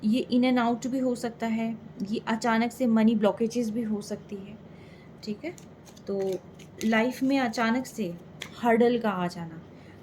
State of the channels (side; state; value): both; identical; correlation 1.00